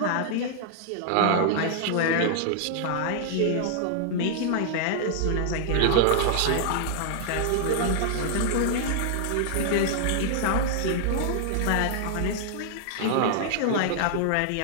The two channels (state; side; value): different; both; correlation -0.01